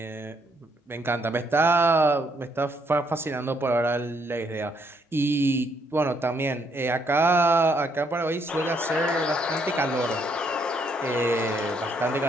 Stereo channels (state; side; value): normal; both; correlation 0.72